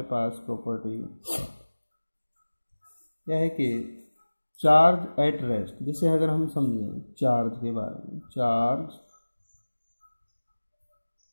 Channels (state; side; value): inverted; both; correlation -1.00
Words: पास property, क्या है कि charge at rest. जैसे अगर हम समझें चार्ज के बारे में, चार्ज